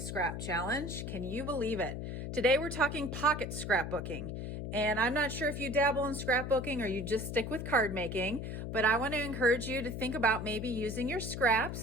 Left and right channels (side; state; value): left; noise; hum, 5 dB below the sound